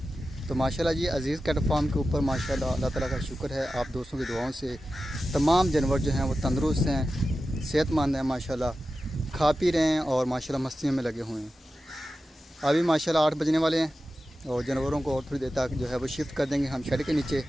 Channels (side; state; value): both; normal; correlation 0.93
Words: तो माशाल्लाह जी, अज़ीज़ कैट फार्म के ऊपर माशाल्लाह अल्लाह ताला का शुक्र है। आप दोस्तों की दुआओं से तमाम जानवर जो हैं वो तंदुरुस्त हैं, सेहतमंद हैं, माशाल्लाह खा पी रहे हैं और माशाल्लाह मस्तियों में लगे हुए हैं। अभी माशाल्लाह 8 बजने वाले हैं और जानवरों को और थोड़ी देर तक जो है वो शिफ्ट कर देंगे हम शेड के नीचे।